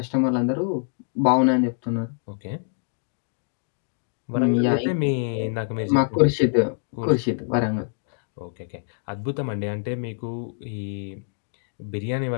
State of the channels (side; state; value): right; silent; digital silence